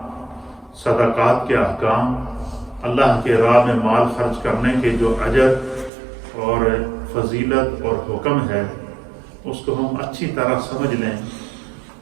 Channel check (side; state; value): left; drops out; at 5.9 s